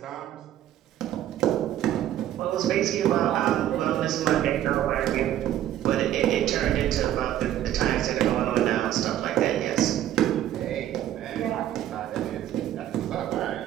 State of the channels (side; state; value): left; quieter; 12.1 dB